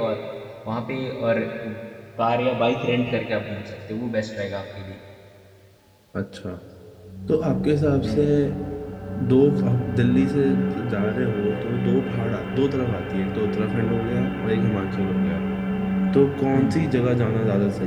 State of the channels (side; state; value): both; identical; correlation 1.00